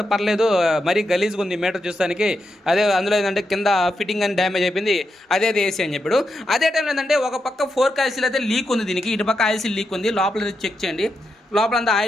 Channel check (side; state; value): both; normal; correlation 0.85